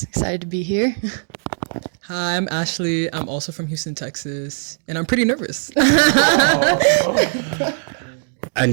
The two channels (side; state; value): left; silent; digital silence